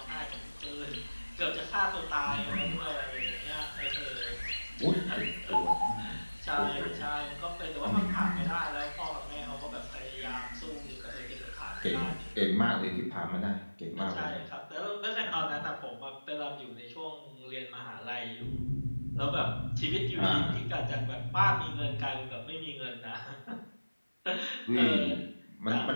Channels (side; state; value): both; inverted; correlation -1.00